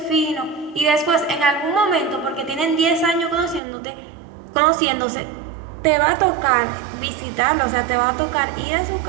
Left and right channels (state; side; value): drops out; left; at 3.6 s